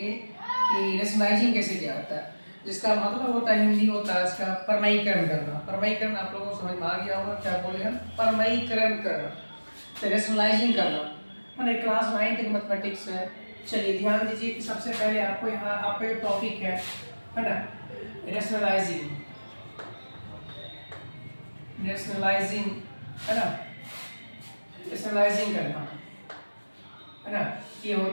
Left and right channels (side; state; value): both; inverted; correlation -1.00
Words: कि रेशनलाइजिंग कैसे किया जाता है, जिसका मतलब होता है हिंदी होता है इसका परमयीकरण करना। परमयीकरण आप लोगों को समझ में आ गया होगा, क्या बोले हम, परमयीकरण करना, तो रेशनलाइजिंग करना, है ना। क्लास 9th मैथमेटिक्स है। चलिए ध्यान दीजिए कि सबसे पहले आपको यहाँ आपका एक टॉपिक है ना, रेशनलाइजिंग। रेशनलाइजिंग है ना, रेशनलाइजिंग करना, है ना, ये